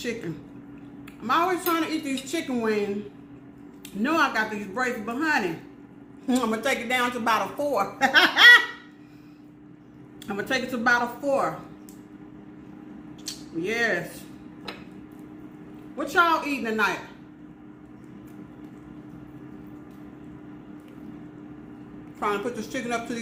I'm always trying to eat these chicken wings. Know I got these braces, but honey, I'm gonna take it down to about a 4. I'm gonna take it to about a 4. Yes. What y'all eating tonight? Trying to put this chicken up to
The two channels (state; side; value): identical; both; correlation 1.00